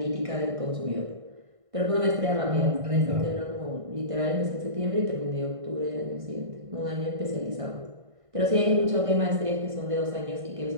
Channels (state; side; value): late; left; 1.5 ms